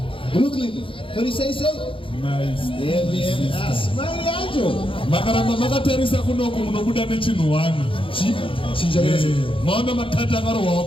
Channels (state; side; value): late; right; 0.25 ms